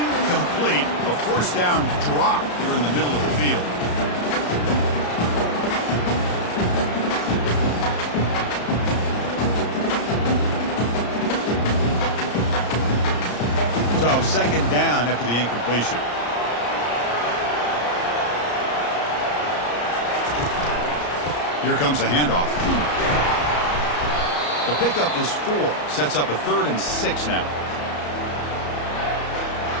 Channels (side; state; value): right; late; 34 ms